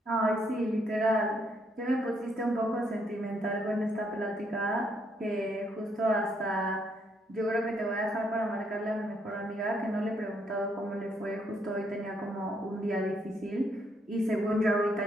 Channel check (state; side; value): normal; both; correlation 0.72